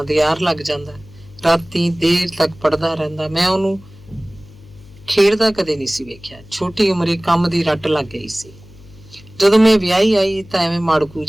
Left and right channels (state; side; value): noise; left; hum, 22 dB below the sound